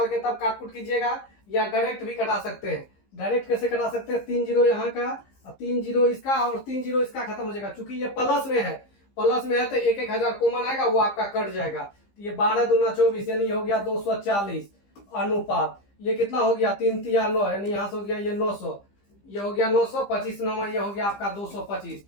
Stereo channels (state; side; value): late; right; 15 ms